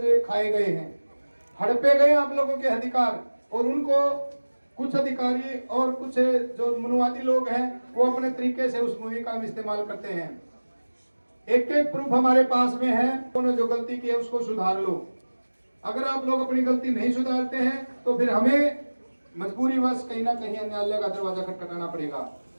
खाए गए हैं, हड़पे गए आप लोगों के अधिकार। और उनको कुछ अधिकारी और कुछ जो मनुवादी लोग हैं वो अपने तरीके से उस मूवी का इस्तेमाल करते हैं। एक एक प्रूफ हमारे पास में है, उन्होंने जो गलती की है उसको सुधार लो। अगर आप लोग अपनी गलती नहीं सुधारते हैं तो फिर हमें मजबूरीवश कहीं ना कहीं न्यायालय का दरवाजा खटखटाना पड़ेगा।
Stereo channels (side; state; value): both; inverted; correlation -1.00